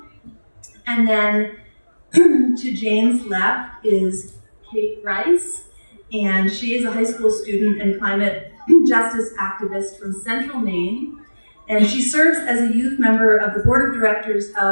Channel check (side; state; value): both; inverted; correlation -1.00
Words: And then to Jane's left is Kaethe Rice, and she is a high school student and climate justice activist from Central Maine. And she serves as a youth member of the board of directors